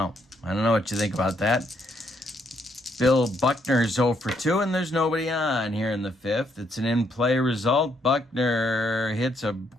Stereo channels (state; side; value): normal; both; correlation 0.73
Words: I don't know what you think about that. Bill Buckner's 0 for 2, and there's nobody on here in the 5th. It's an in-play result. Buckner hits a